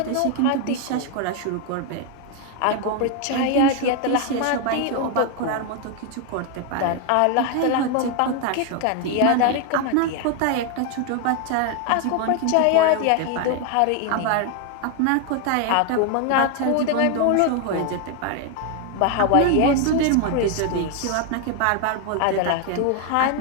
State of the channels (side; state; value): both; different; correlation 0.01